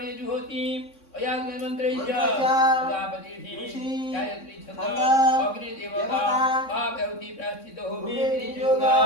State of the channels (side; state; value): right; late; 3.6 ms